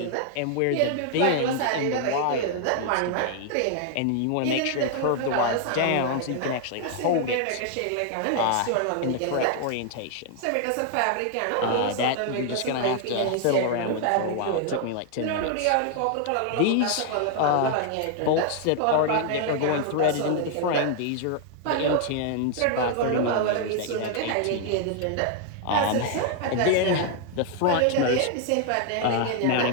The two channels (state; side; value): different; both; correlation 0.00